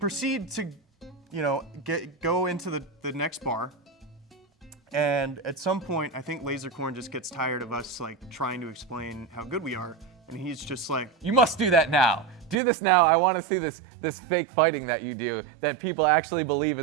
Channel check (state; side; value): drops out; left; at 12.6 s